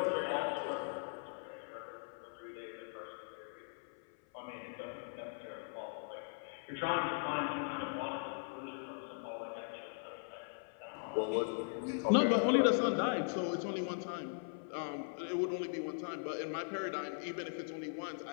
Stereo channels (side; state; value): right; silent; 51 dB below the other